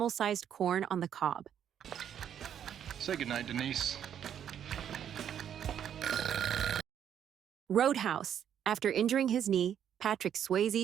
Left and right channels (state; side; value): quieter; left; 9.3 dB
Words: corn on the cob. Say goodnight, Denise. Roadhouse. After injuring his knee, Patrick